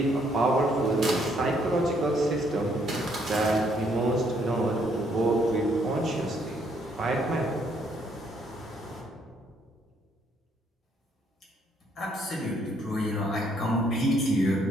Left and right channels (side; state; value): both; normal; correlation 0.69